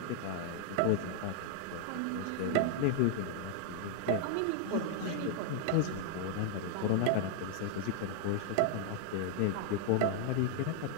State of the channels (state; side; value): different; both; correlation 0.00